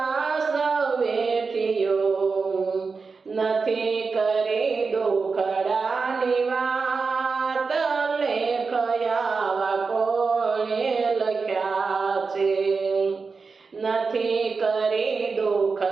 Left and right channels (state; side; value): quieter; left; 4.7 dB